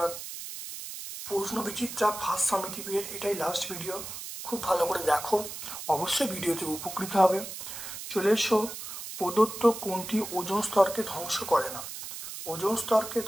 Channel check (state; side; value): noise; right; hiss, 9 dB below the sound